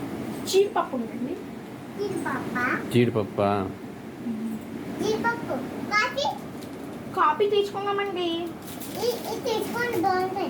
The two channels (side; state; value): both; identical; correlation 1.00